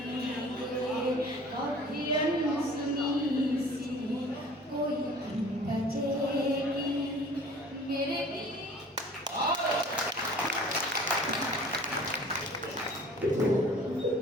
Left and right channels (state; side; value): normal; both; correlation 0.47